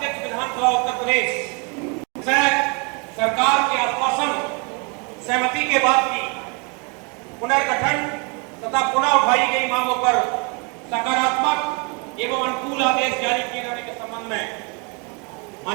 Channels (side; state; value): left; quieter; 33.2 dB